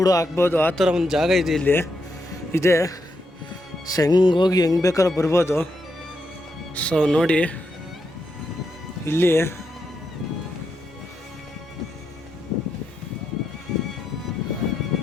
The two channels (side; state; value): both; normal; correlation 0.83